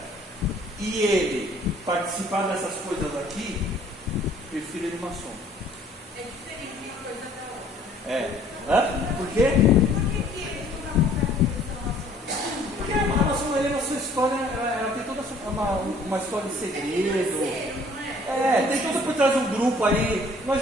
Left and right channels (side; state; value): both; normal; correlation 0.56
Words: e ele participar dessas coisas aqui, prefiro ele maçom. É diferente uma coisa da outra. Por quê? Por que eles não dão vontade de Porque a maçonaria, na sua história, ela tem toda uma história de segredo. Tem tudo por trás de um grupo aí. Nós